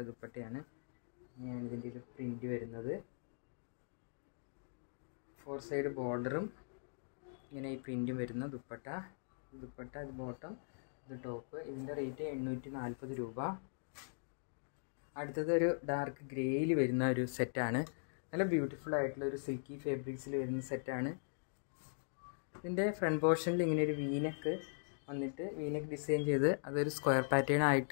ദുപ്പട്ടയാണ്. ഇങ്ങനെയാണ് ഇതിൻ്റെ ഒരു പ്രിൻ്റ് വരുന്നത്. 4 സൈഡ് ബോർഡറും ഇങ്ങനെ ഈ പ്രിൻറ്റും വരുന്ന ദുപ്പട്ട. അത് ബോട്ടം, ഇത് ടോപ്പ്. ഇതിൻ്റെ റേറ്റ് 840 രൂപ. അടുത്തത് ഒരു ഡാർക്ക് ഗ്രേയിൽ വരുന്ന ഒരു സെറ്റാണ്. നല്ല ബ്യൂട്ടിഫുൾ ആയിട്ടുള്ള ഒരു സിൽക്കി ഫാബ്രിക്സിൽ വരുന്ന സെറ്റാണ്. ഇതിൻ്റെ ഫ്രണ്ട് പോർഷനിൽ ഇങ്ങനെ ഒരു വീനക്ക് വന്നിട്ട് വീനക്ക് ഡിസൈൻ ചെയ്ത് അതൊരു സ്ക്വയർ പാറ്റേൺ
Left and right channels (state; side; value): silent; right; digital silence